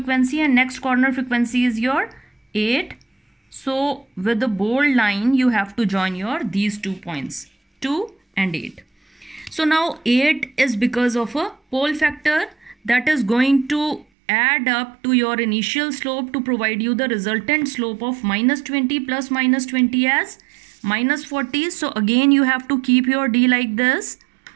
and next corner frequency is your 8. So with the bold line you have to join your these 2 points, 2 and 8. So now 8 is because of a pole factor that is going to add up to your initial slope to provide you the resultant slope of minus 20 plus minus 20 as minus 40. So again you have to keep your D like this,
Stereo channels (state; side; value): drops out; left; at 14.1 s